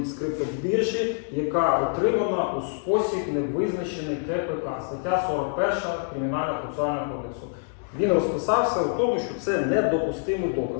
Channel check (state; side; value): silent; right; digital silence